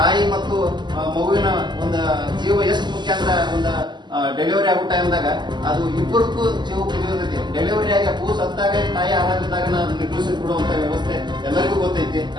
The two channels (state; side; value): late; left; 0.21 ms